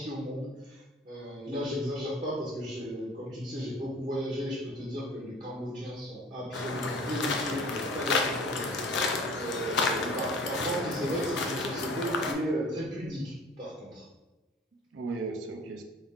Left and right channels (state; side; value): normal; both; correlation 0.46